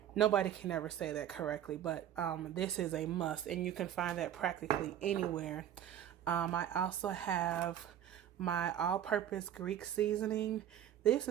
Nobody can ever say that correctly, but this is a must, and you can find that practically anywhere. I also have my all-purpose Greek seasoning. This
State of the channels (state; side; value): quieter; left; 10.6 dB